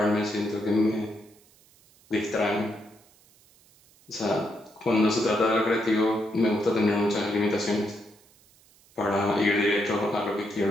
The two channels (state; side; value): noise; right; hiss, 30 dB below the sound